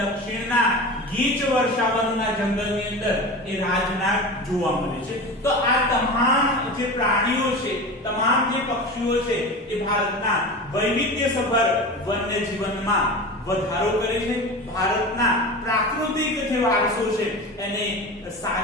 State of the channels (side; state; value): both; normal; correlation 0.30